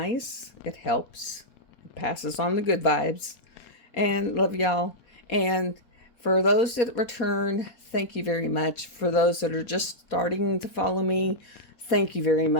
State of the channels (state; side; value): late; right; 4.2 ms